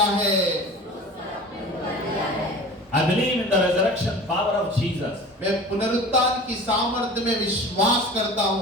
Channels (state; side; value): normal; both; correlation 0.39